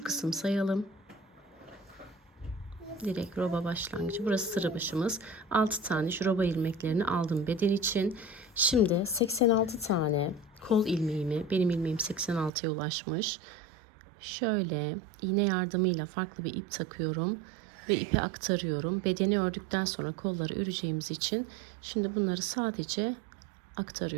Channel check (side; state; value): left; drops out; at 12.5 s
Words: kısım sayalım. Direkt roba başlangıcı. Burası sıra başımız. 6 tane şu roba ilmeklerini aldım beden için. Şimdi 86 tane kol ilmeğimi, benim ilmeğim 86'ya ulaşmış. Şöyle iğne yardımıyla farklı bir ip takıyorum ve ipe aktarıyorum. Bedeni ördükten sonra kolları öreceğimiz için şimdi bunları sadece